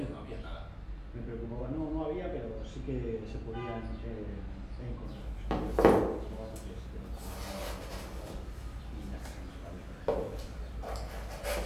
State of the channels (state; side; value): identical; both; correlation 1.00